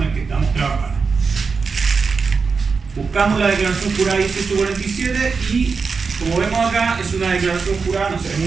el que estamos trabajando. Buscamos la declaración jurada 1847 y, como vemos acá, es una declaración jurada, no se ve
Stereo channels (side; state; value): left; quieter; 5.0 dB